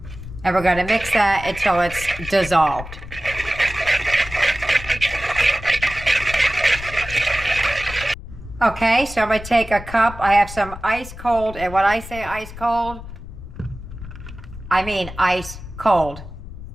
And we're going to mix that until it's dissolved. Okay, so I'm going to take a cup. I have some ice cold, and when I say ice cold, I mean ice cold.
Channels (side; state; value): left; noise; rumble, 13 dB below the sound